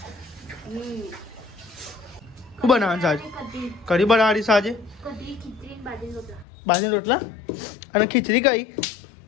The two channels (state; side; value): drops out; right; at 6.5 s